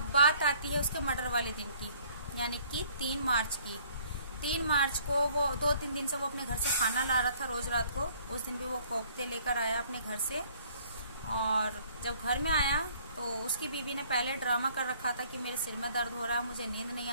बात आती है उसके मर्डर वाले दिन की, यानी कि 3 मार्च की। 3 मार्च को वो 2-3 दिन से वो अपने घर से खाना ला रहा था रोज रात को, उस दिन भी वो कोफ्ते लेकर आया अपने घर से। और जब घर में आया तो उसकी बीवी ने पहले ड्रामा कर रखा था कि मेरे सिर में दर्द हो रहा है, मुझे नींद नहीं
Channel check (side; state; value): both; inverted; correlation -0.59